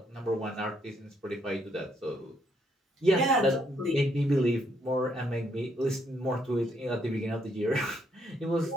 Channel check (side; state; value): both; normal; correlation 0.73